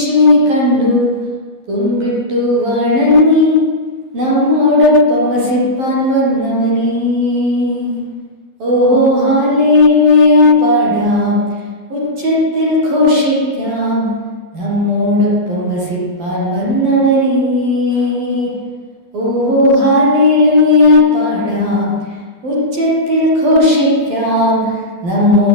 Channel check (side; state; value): left; late; 12 ms